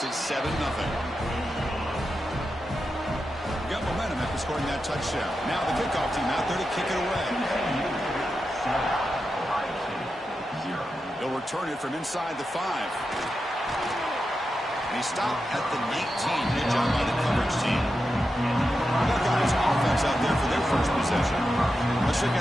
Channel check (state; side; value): normal; both; correlation 0.89